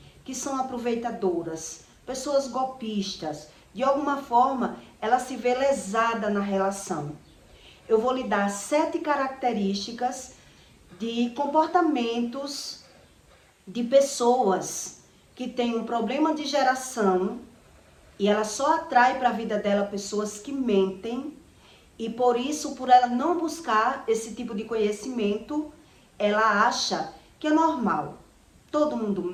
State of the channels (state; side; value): identical; both; correlation 1.00